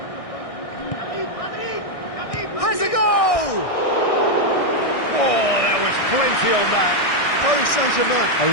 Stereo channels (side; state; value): right; late; 1.6 ms